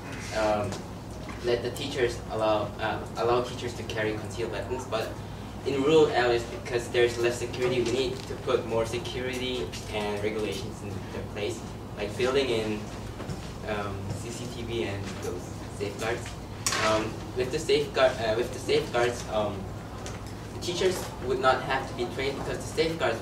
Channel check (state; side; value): identical; both; correlation 1.00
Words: let the teachers allow teachers to carry concealed weapons, but in rural areas, because there's less security, we need to put more security and regulations in their place, like building in CCTV and those safeguards. With the safeguards, the teachers would not have to be trained because the safeguards